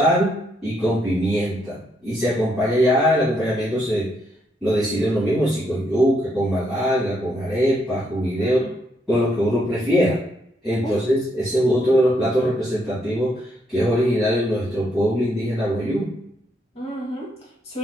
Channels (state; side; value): normal; both; correlation 0.75